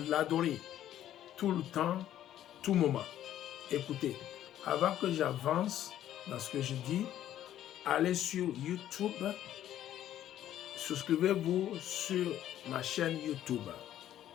tout le temps, tout moment. Écoutez, avant que j'avance dans ce que je dis, allez sur YouTube, souscrivez-vous sur ma chaîne YouTube.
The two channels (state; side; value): quieter; right; 11.9 dB